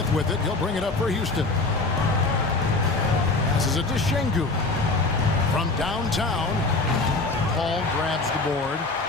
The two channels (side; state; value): right; quieter; 3.4 dB